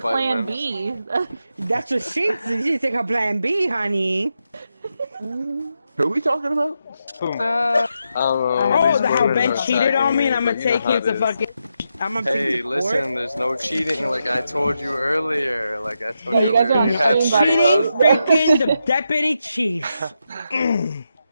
vitamins. B. That's what she did. She didn't take her plan B, honey. Who are we talking about? Oh, how Ben cheated on me, and I'm gonna take him to fucking. I'm gonna Hey, take him to court. listen, there's no cheating like I told you earlier. Like I told Yeah, you you guys are on earlier. You had the same three Cheating, husbands. freaking the deputy chief.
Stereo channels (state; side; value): inverted; both; correlation -0.85